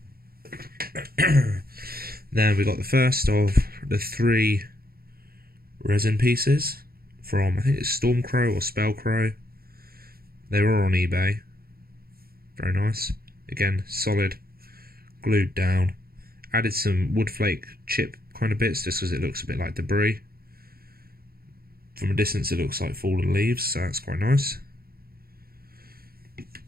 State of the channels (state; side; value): late; left; 0.44 ms